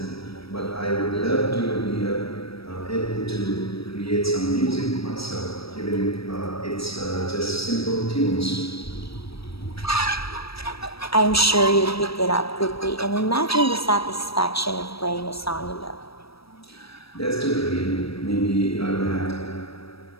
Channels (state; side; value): late; right; 0.76 ms